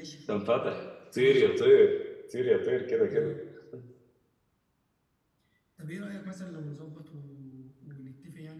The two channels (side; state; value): both; identical; correlation 1.00